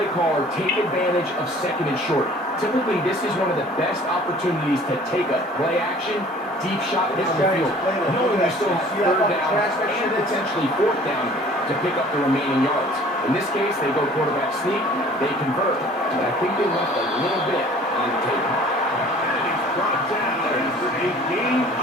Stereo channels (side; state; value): both; normal; correlation 0.50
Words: caller take advantage of 2nd and short. Typically, this is one of the best opportunities to take a play action, deep shot down the field, knowing you still have 3rd down and potentially 4th down to pick up the remaining yards. In this case, they go quarterback sneak, they convert. But I think they left a little bit on the table. And he's brought down